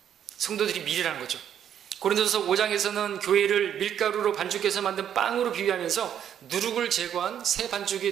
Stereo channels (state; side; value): quieter; left; 9.5 dB